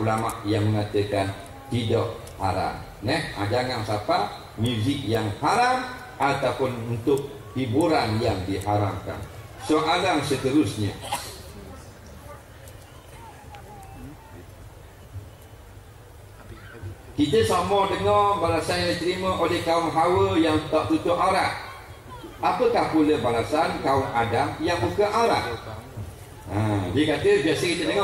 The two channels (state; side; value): identical; both; correlation 1.00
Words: yang mengatakan tidak haram. Jangan sampai muzik yang haram ataupun untuk hiburan yang diharamkan. Soalan seterusnya, kita sama dengar balasan yang diterima oleh kaum Hawa yang tak tutup aurat. Apakah pula balasan kaum Adam yang buka aurat? Dia kata biasa kita